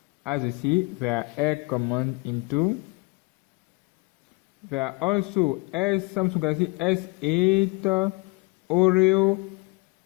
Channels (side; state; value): right; quieter; 27.2 dB